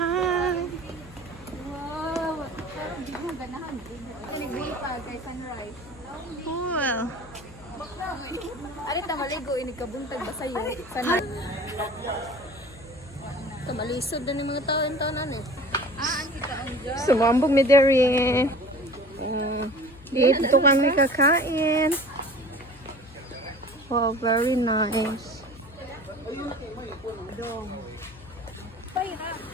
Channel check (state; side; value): noise; left; hum, 20 dB below the sound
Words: Cool. Ano ta maligo ini kabuntag ba sayo? Sana. Malisod na yung mga taon-taonan Sumambog mi dere. Dito kami kakain. Wow, very nice.